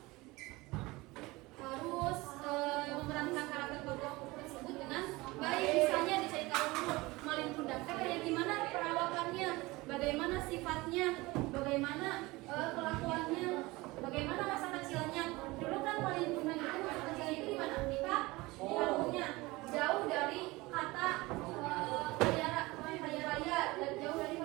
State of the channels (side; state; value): left; quieter; 21.7 dB